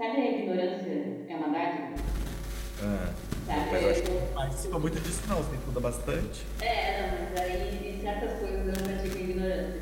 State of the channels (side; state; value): both; identical; correlation 1.00